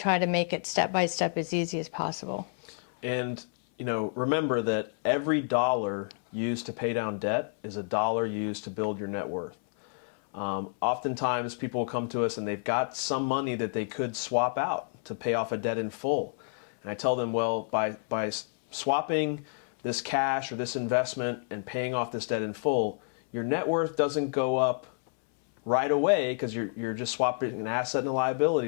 to make it step by step as easy as possible. And remember that every dollar used to pay down debt is a dollar used to build your net worth. Oftentimes people will come to us and they've got some money that they could swap out to pay off a debt in full. And I tell them, well, by swapping this cash or this investment and paying off this debt in full, your net worth doesn't go up right away because you're just swapping an asset and a liability.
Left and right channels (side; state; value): right; silent; 58 dB below the other